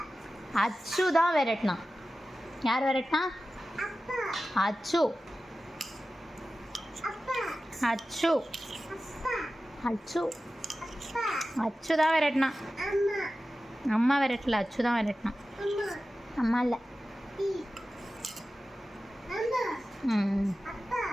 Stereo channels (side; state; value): both; normal; correlation 0.95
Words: அச்சு தான் விரட்டினான். யார் விரட்டினா? அச்சு. அச்சு அச்சு அச்சு தான் விரட்டினான். அம்மா விரட்டல, அச்சு தான் விரட்டினான். அம்மா இல்லை.